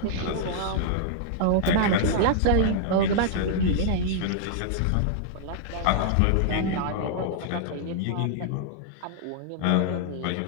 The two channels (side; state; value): both; different; correlation -0.01